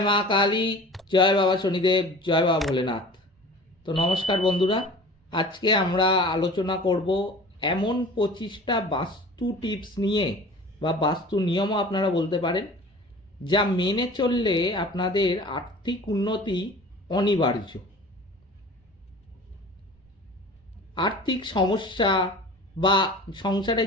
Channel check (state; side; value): normal; both; correlation 0.42